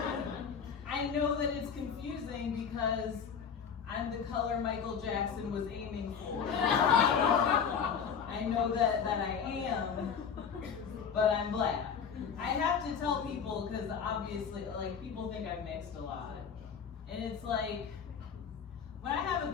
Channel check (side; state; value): right; quieter; 6.9 dB